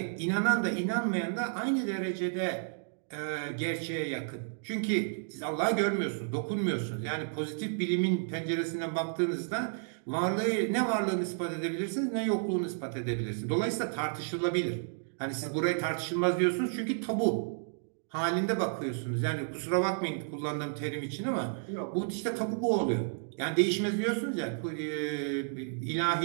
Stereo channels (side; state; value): left; silent; digital silence